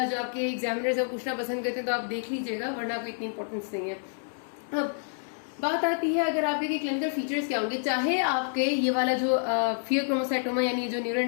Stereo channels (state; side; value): silent; right; digital silence